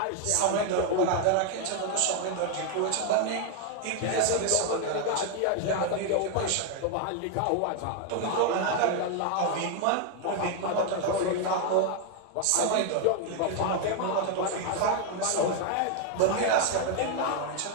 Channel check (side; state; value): both; different; correlation 0.01